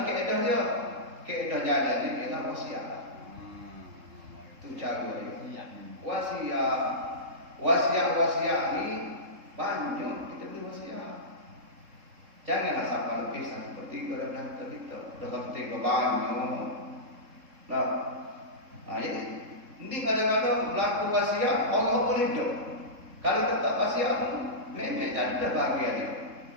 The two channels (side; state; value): left; late; 3.7 ms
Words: keadaan dia? Keadaan jalan ni ialah wasiat lah. Itu cara dia. Wasiat ni banyak kita beri wasiat. Janganlah sampai lebih 1/3 daripada harta kita. Dah 1/3 banyak. Nah, jadi ini kadang-kadang berlaku wasiat Allah boleh hidup. Kalau tetap wasiat memang jadi dah bahagia dia.